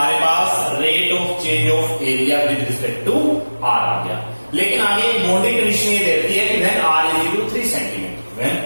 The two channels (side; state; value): both; inverted; correlation -1.00